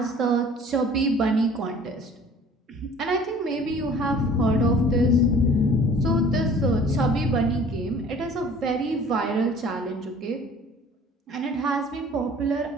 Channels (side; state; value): both; normal; correlation 0.50